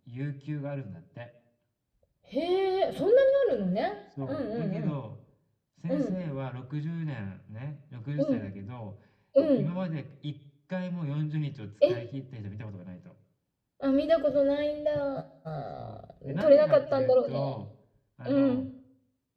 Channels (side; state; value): both; identical; correlation 1.00